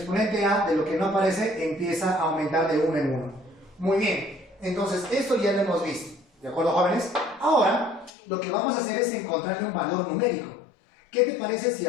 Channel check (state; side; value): drops out; right; at 8.1 s